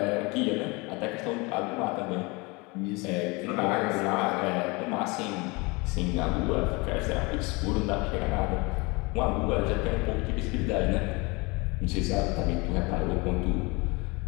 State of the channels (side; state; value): right; quieter; 26.6 dB